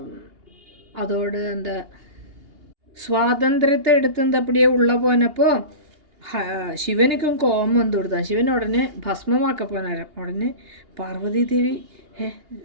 അതോട് എന്താ സ്വാതന്ത്ര്യത്തെ എടുത്ത് അപ്പടിയെ ഉള്ള പോനപ്പോൾ ശിവനിക്കും കോപം വന്നു കൊടുത്താൽ ശിവൻ ഉടനെ ഭസ്മമാക്കപ്പോനാരം. ഉടനെ പാർവതി ദേവി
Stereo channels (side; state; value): left; late; 2.8 ms